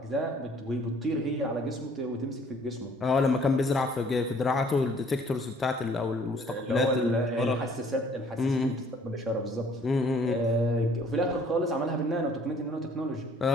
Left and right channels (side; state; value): both; normal; correlation 0.58